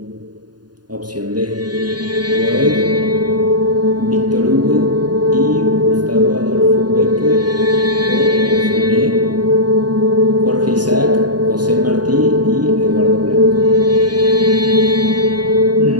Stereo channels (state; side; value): late; left; 0.70 ms